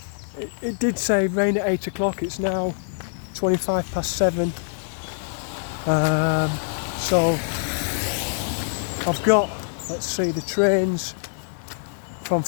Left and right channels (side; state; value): right; silent; digital silence